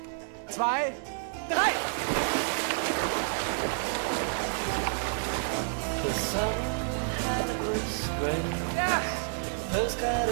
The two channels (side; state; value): left; silent; digital silence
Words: 2, 3! The sun was great. Ja! Postcard